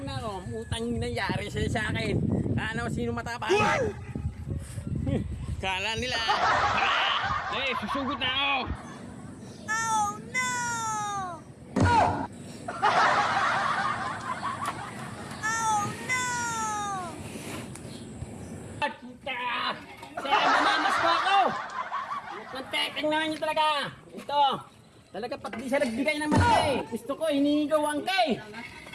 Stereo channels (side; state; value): both; identical; correlation 1.00